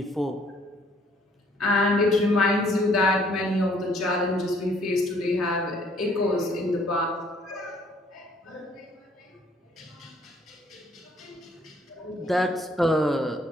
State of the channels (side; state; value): both; normal; correlation 0.63